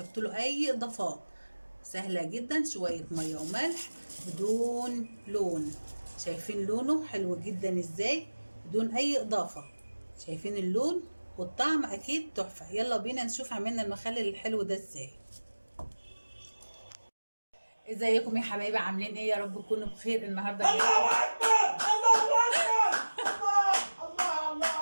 له اي اضافات. سهله جدا، شويه ميه وملح بدون لون. شايفين لونه حلو جدا ازاي؟ بدون اي اضافه. شايفين اللون والطعم اكيد تحفه. يلا بينا نشوف عملنا المخلل الحلو ده ازاي. ازيكم يا حبايبي؟ عاملين ايه؟ يا رب تكونوا بخير. النهارده الله اكبر الله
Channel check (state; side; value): inverted; both; correlation -1.00